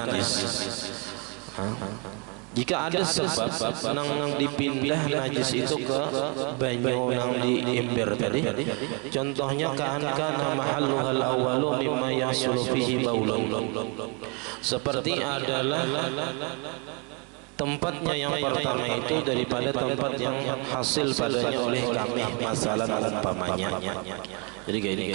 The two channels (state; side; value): quieter; left; 33.6 dB